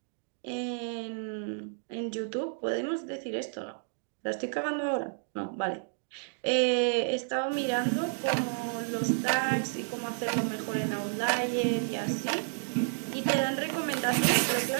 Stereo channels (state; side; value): silent; left; digital silence